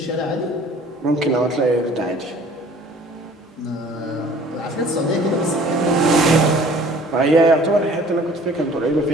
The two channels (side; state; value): both; normal; correlation 0.51